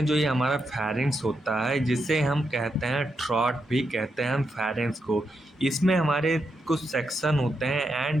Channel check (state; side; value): normal; both; correlation 0.84